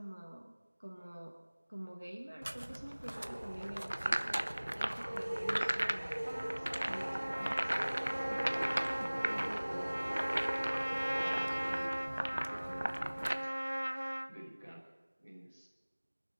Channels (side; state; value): both; inverted; correlation -1.00